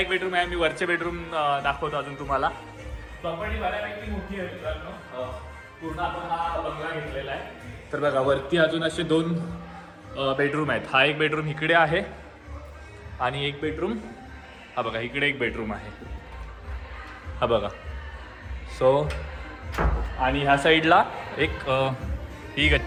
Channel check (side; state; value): both; identical; correlation 1.00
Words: बेडरूम आहे. मी वरचे बेडरूम दाखवतो अजून तुम्हाला. प्रॉपर्टी बऱ्यापैकी मोठी आहे मित्रांनो. पूर्ण आपण हा बंगला घेतलेला आहे. तर बघा वरती अजून असे 2 बेडरूम आहेत. हा एक बेडरूम इकडे आहे आणि एक बेडरूम हा बघा इकडे एक बेडरूम आहे हा बघा. सो आणि ह्या साईडला एक ही